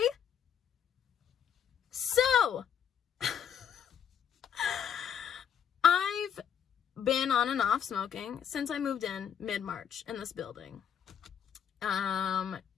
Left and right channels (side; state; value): right; quieter; 8.4 dB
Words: So, I've been on and off smoking since I moved in mid-March in this building.